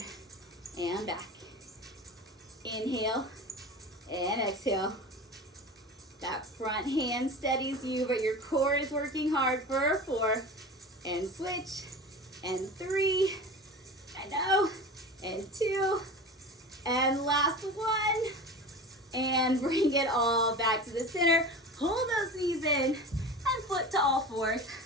and back. Inhale and exhale. That front hand steadies you, but your core is working hard for 4. And switch. And 3. I know. And 2. And last 1. And bring it all back to the center. Pull those knees in. And flip to all 4s.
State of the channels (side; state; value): both; normal; correlation 0.32